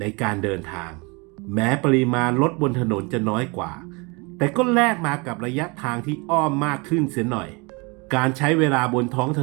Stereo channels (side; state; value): left; quieter; 28.8 dB